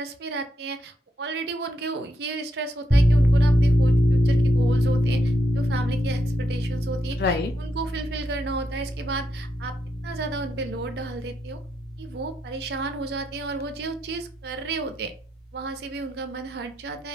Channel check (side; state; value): both; normal; correlation 0.82